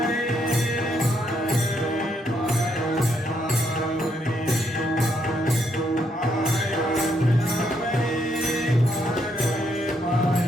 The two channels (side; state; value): both; normal; correlation 0.75